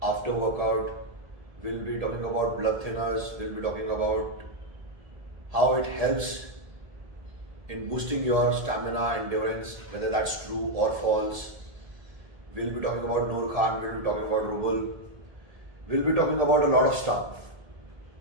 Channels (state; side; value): late; left; 1.7 ms